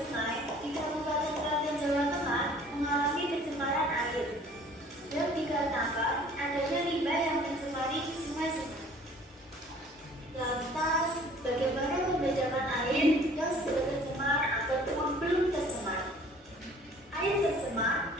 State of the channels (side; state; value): both; normal; correlation 0.52